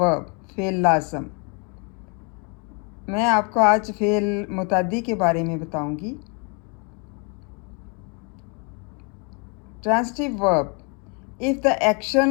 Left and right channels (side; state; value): right; quieter; 35.0 dB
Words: फेल लाज़म। मैं आपको आज फेल मुतादी के बारे में बताऊंगी। Transitive verb. If the